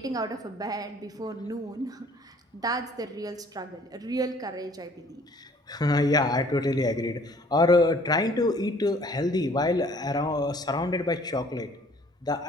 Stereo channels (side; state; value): both; normal; correlation 0.56